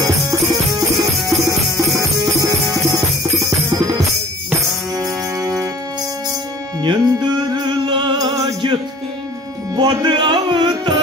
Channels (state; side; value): normal; both; correlation 0.48